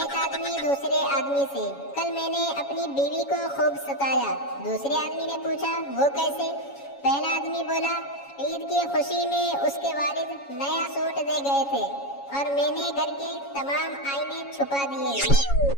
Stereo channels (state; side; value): late; right; 7.2 ms